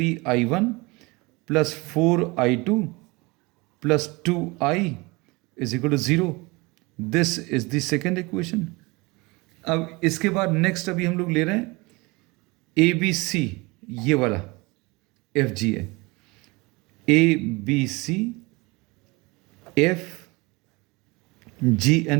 plus 4I2 plus 2I is equal to 0। This is the second equation. अब इसके बाद नेक्स्ट अभी हम लोग ले रहे हैं ABC, ये वाला FGA, ABC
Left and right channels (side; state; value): left; quieter; 24.8 dB